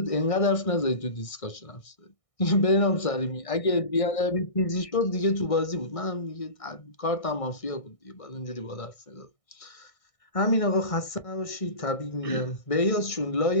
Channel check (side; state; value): right; late; 1.6 ms